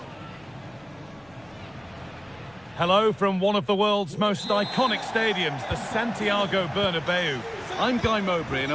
Hello from one of the world's most iconic stadiums, the Santiago Bernabeu. I'm Guy Mowbray, and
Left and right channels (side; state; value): left; noise; hum, 29 dB below the sound